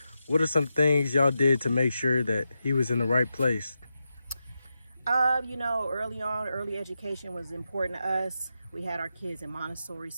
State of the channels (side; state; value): both; inverted; correlation -0.88